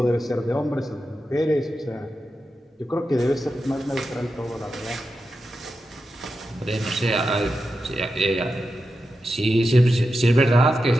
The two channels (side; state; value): both; normal; correlation 0.89